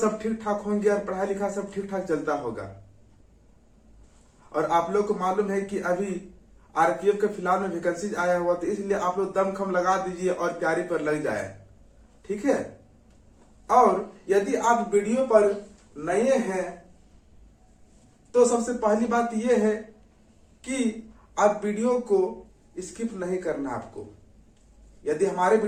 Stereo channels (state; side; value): identical; both; correlation 1.00